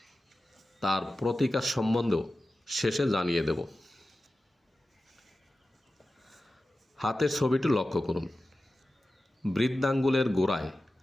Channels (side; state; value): both; normal; correlation 0.94